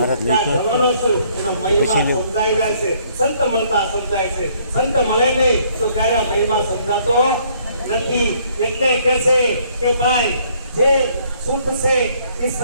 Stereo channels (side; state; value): both; inverted; correlation -0.64